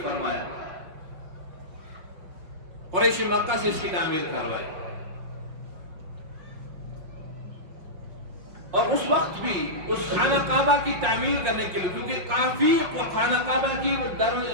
فرمایا، قریش مکہ سے اس کی تعمیر کروائی۔ اور اس وقت بھی اس خانہ کعبہ کی تعمیر کرنے کے لیے، کیونکہ کافی خانہ کعبہ کی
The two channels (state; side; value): late; left; 5.6 ms